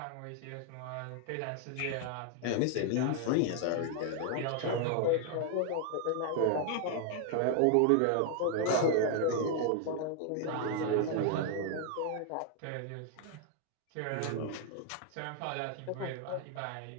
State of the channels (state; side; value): different; both; correlation 0.00